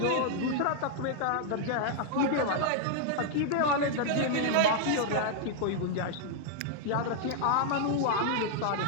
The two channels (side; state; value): both; different; correlation 0.00